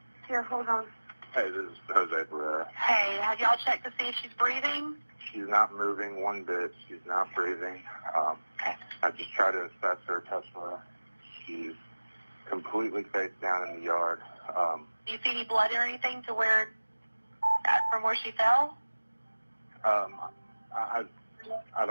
Here, hold on. Hey, this is Jose Pereira. Hey, have y'all checked to see if she's breathing? She's not moving one bit. She's not breathing. Okay. I just tried to assess her, touch her. She's completely face down in the yard. Do you see any blood or anything to where, from where she fell? I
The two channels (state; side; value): inverted; both; correlation -1.00